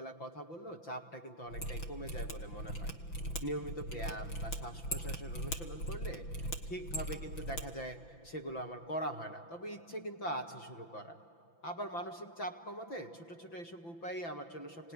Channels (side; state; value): right; late; 5.9 ms